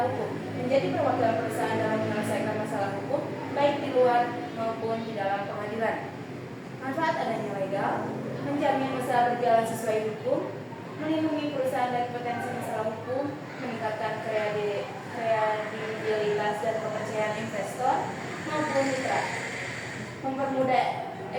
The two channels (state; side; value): identical; both; correlation 1.00